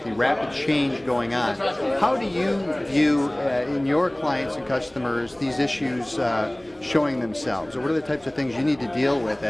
the rapid change going on, how do you view in your clients and customers these issues showing themselves? Or what are the types of things you need to deal with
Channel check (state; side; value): noise; right; hum, 30 dB below the sound